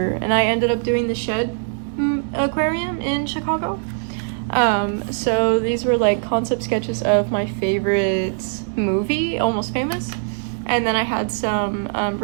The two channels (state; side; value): silent; left; 65 dB below the other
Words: and I ended up doing the Shed Aquarium in Chicago. So these were like concept sketches of my favorite movie, Almost Famous, and then I had some